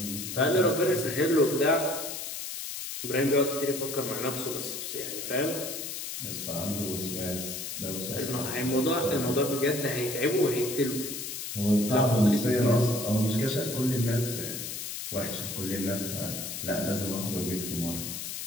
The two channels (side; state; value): left; noise; hiss, 6 dB below the sound